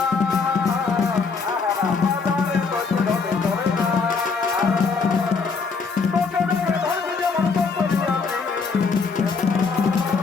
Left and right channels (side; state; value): right; quieter; 4.9 dB